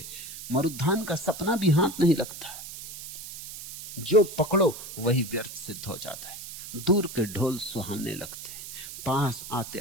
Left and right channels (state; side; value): noise; right; hiss, 11 dB below the sound